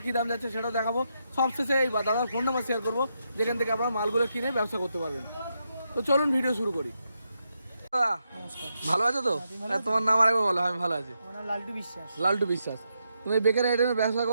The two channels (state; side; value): inverted; both; correlation -0.83